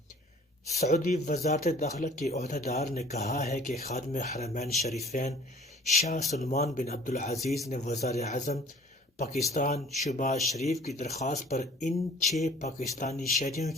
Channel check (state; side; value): normal; both; correlation 0.51